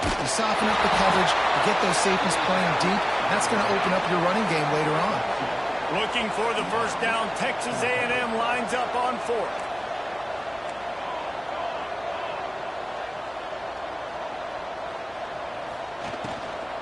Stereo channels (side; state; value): left; noise; hum, 28 dB below the sound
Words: You soften up the coverage. You get those safeties playing deep. That's going to open up your running game later on. Looking for the first down. Texas A&M lines up on 4th.